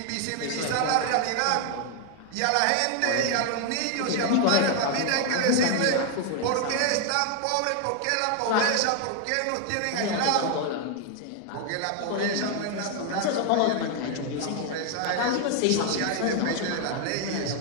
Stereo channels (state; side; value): different; both; correlation 0.00